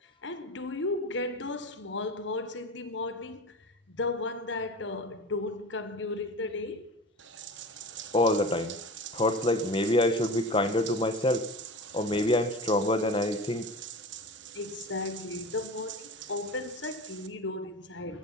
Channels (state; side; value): normal; both; correlation 0.32